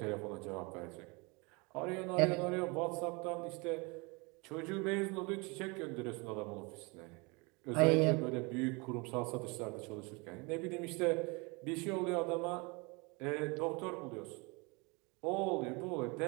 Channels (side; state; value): left; quieter; 28.6 dB